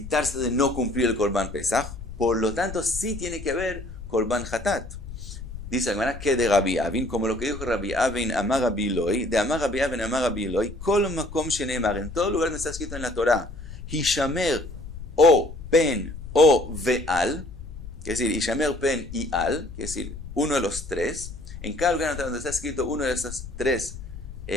de no cumplir el Korban Pesach. Por lo tanto, sí tiene que haber Korban Hatat. Dice la Gemara que de Rabbi Avin, como lo que dijo Rabbi Avin, Amar Rabbi Eloi, de Amar Rabbi Avin, Amar Rabbi Eloi, Kol Makom Sheneemar, en todo lugar donde está escrito en la Torah, Hishamer o Pen o Veal, que es decir, Hishamer Pen y Al, que es decir, uno de los tres, en cada lugar donde está escrito uno de esos tres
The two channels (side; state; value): left; noise; rumble, 11 dB below the sound